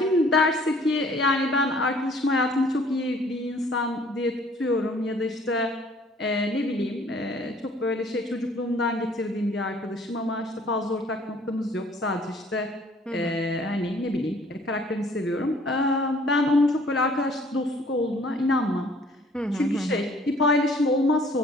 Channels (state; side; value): normal; both; correlation 0.57